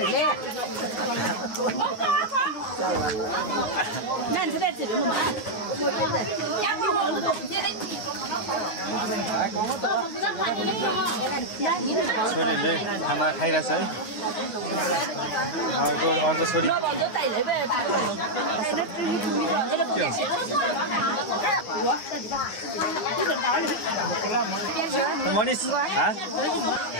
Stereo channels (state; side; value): late; right; 9.5 ms